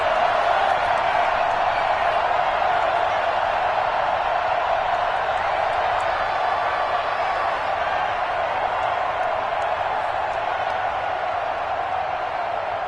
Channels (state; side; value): identical; both; correlation 1.00